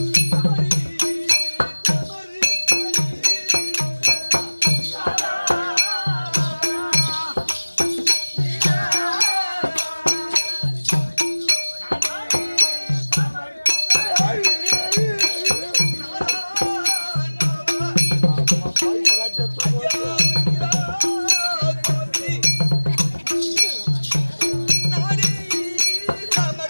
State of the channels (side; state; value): both; inverted; correlation -1.00